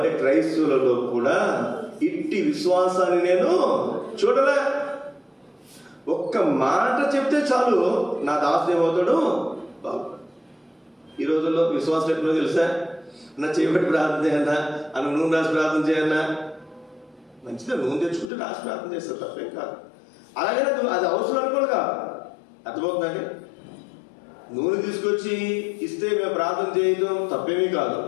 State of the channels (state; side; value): drops out; right; at 18.3 s